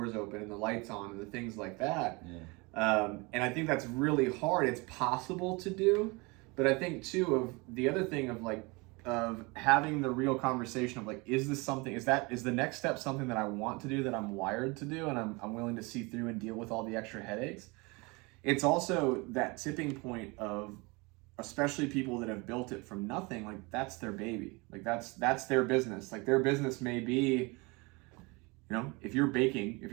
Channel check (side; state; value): left; quieter; 26.8 dB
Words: open and the lights on and the things like that. And I think that's really hard. It's possible to do, but I think too of the other thing of having the real conversation of like, is the next step something that I want to do, that I'm wired to do, and I'm willing to see through and deal with all the extra headaches. It's also that tipping point of, especially people that have built it from nothing, like that's their baby. Like that's their business. Like their business may be, if you're